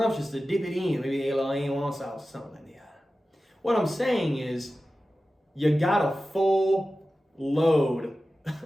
to dip it in. Maybe a little A1 sauce or something like that. What I'm saying is, you got a full load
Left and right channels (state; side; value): normal; both; correlation 0.94